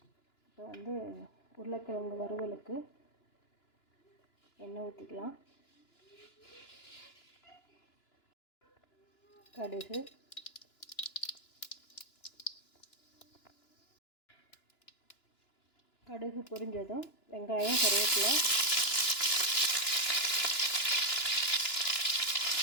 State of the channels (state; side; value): late; right; 2.9 ms